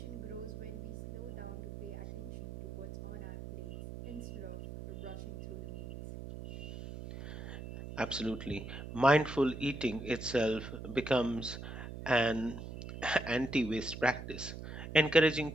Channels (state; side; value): noise; right; hum, 9 dB below the sound